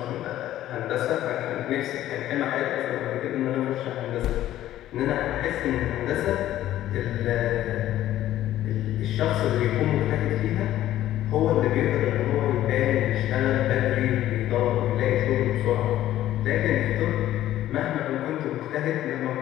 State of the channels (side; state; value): right; quieter; 13.3 dB